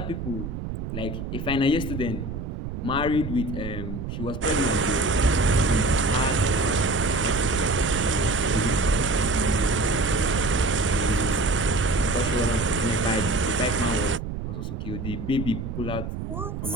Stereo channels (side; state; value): right; noise; rumble, 6 dB below the sound